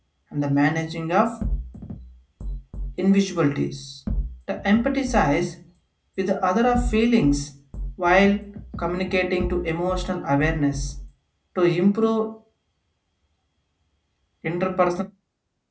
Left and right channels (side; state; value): both; identical; correlation 1.00